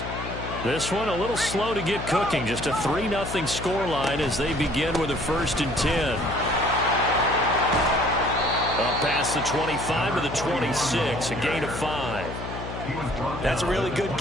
This one a little slow to get cooking. Just a 3-0 scoreline as they begin with a 1st and 10. Up past the 25 to the 26, a gain of 5. That's a really good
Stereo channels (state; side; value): noise; left; hum, 8 dB below the sound